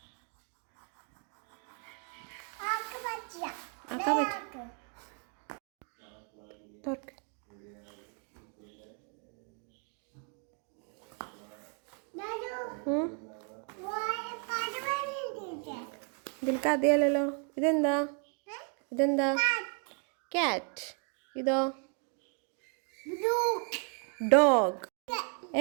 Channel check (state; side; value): quieter; left; 39.3 dB